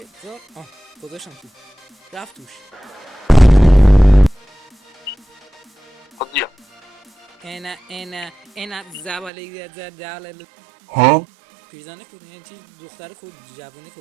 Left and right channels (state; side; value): drops out; left; at 9.3 s